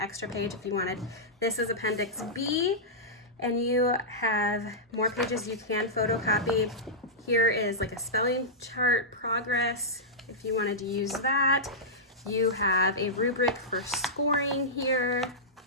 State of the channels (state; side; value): normal; both; correlation -0.12